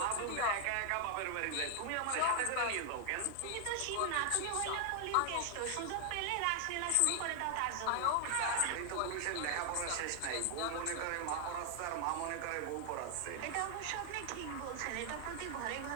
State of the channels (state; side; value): different; both; correlation 0.00